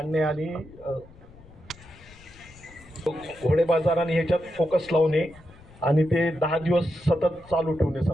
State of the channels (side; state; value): left; noise; rumble, 23 dB below the sound